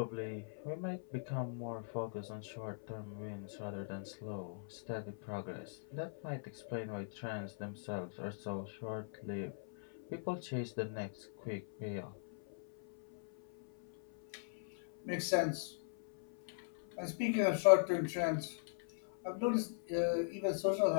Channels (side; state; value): right; silent; 51 dB below the other